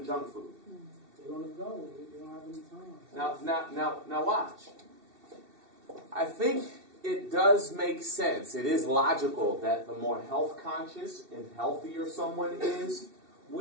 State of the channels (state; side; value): late; left; 2.7 ms